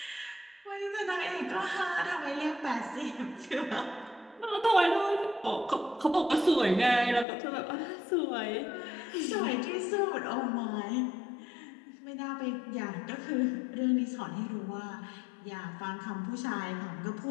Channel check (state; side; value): drops out; right; at 7.2 s